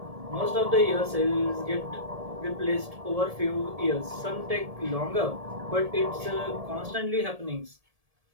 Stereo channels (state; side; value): late; left; 1.7 ms